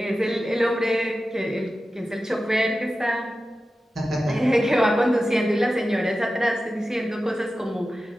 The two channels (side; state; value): both; normal; correlation 0.93